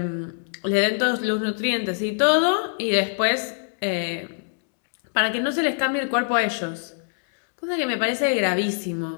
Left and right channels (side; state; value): right; silent; digital silence